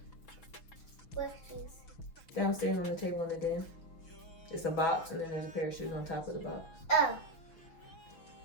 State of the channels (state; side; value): late; right; 5.9 ms